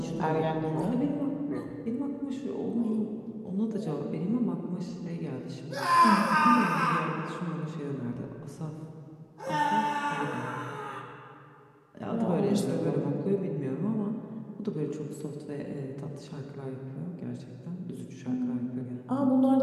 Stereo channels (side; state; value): both; identical; correlation 1.00